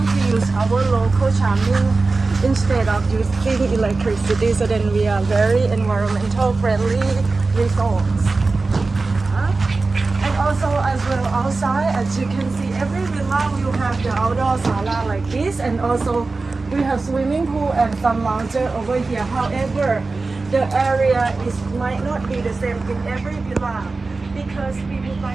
to use our local charming instead of using electricity, so then we are very environmental friendly resorts. And also as well outside, as you can see, every villa will have the outdoor sala like this, and also we have swimming pool and some lounger over here. However, the area might not be the same in every villa because we would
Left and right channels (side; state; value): left; quieter; 3.7 dB